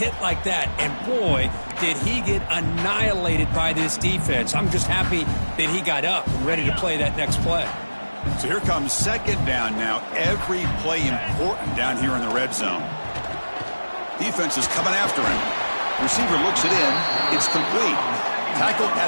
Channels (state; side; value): inverted; both; correlation -1.00